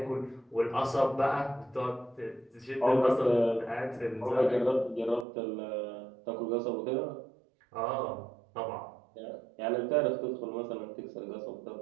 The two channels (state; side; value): drops out; left; at 5.2 s